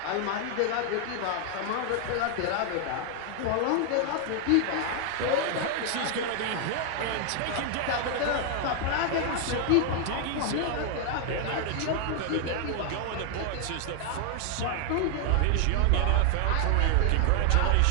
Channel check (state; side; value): different; both; correlation 0.00